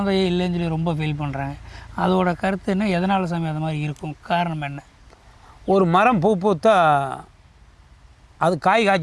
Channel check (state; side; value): identical; both; correlation 1.00